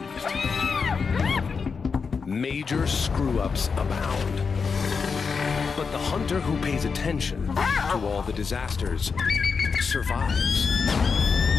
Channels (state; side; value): quieter; right; 5.4 dB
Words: Major screw-ups abound. But the hunter who pays attention to all the disasters survives.